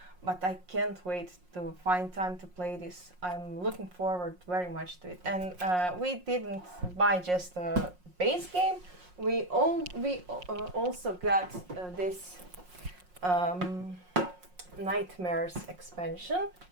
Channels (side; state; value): left; late; 5.5 ms